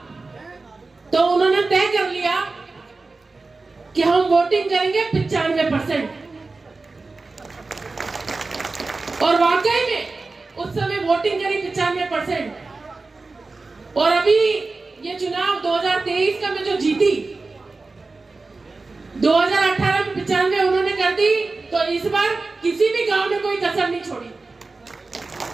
तो उन्होंने तय कर लिया कि हम वोटिंग करेंगे 95%। और वाकई में उस समय वोटिंग करी 95%। और अभी ये चुनाव 2023 का मैं जो जीती, 2018 में 95 उन्होंने कर दी, तो इस बार किसी भी गांव में कोई कसर नहीं छोड़ी,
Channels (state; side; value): quieter; left; 3.7 dB